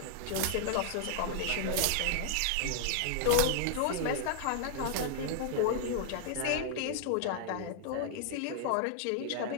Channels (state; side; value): different; both; correlation -0.01